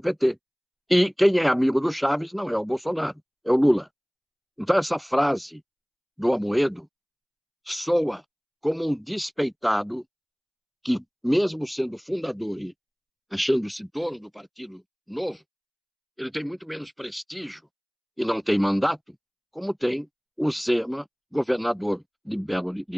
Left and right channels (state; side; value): identical; both; correlation 1.00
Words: PT. E quem é amigo do Chaves não é o Bolsonaro, é o Lula. Então, essa frase do Amoedo soa como um despeitado que, mesmo sendo fundador e achando-se dono do Partido Novo, ele tem muito menos prestígio e não tem mandato, como tem o Zema, governador